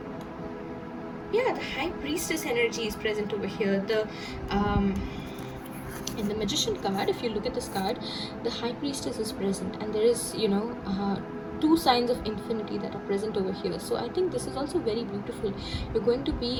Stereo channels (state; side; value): identical; both; correlation 1.00